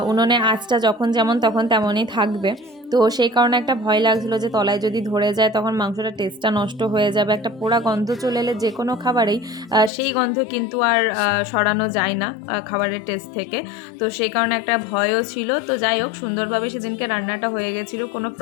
উনুনে আঁচটা যখন যেমন তখন তেমনই থাকবে। তো সেই কারণে একটা ভয় লাগছিলো যে তলায় যদি ধরে যায় তখন মাংসটা টেস্টটা নষ্ট হয়ে যাবে, একটা পোড়া গন্ধ চলে এলে যে কোনো খাবারেই সেই গন্ধ কিন্তু আর সরানো যায় না খাবারের টেস্ট থেকে, তো সেই কারণে একটা ভয়ও ছিল। তো যাই হোক, সুন্দরভাবে সেদিনকে রান্নাটা হয়ে গেছিলো, কোনো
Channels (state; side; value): drops out; right; at 9.9 s